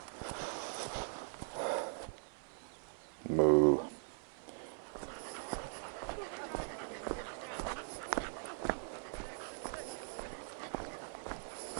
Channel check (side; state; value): left; silent; 51 dB below the other